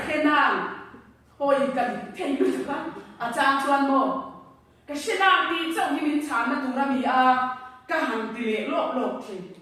khe nàng hồi cần thay đổi các trang chuan mò cái khe nàng thì trong khi mình chán nó tụi nó bị cả hàng tỷ lệ lộp thì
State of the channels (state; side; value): identical; both; correlation 1.00